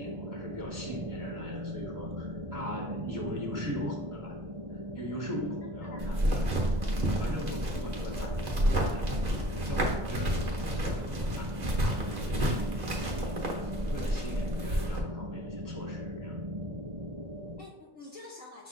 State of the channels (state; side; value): late; left; 2.0 ms